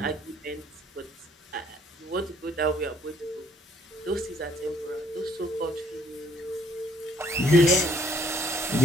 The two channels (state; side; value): normal; both; correlation 0.63